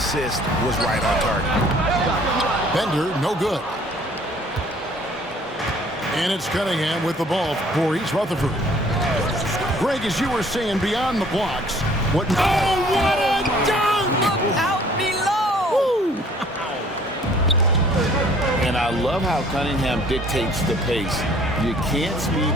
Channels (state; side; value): normal; both; correlation 0.56